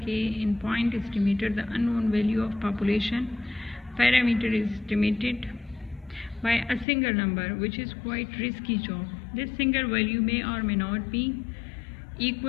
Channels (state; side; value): drops out; right; at 6.9 s